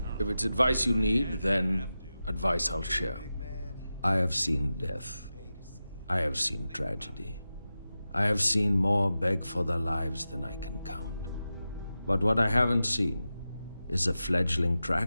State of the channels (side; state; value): both; inverted; correlation -0.93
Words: If it's advice you need, then advice I'll share. I have seen death. I have seen tragedy. I have seen more beg for their lives than I can count. But what I haven't seen is a fledgling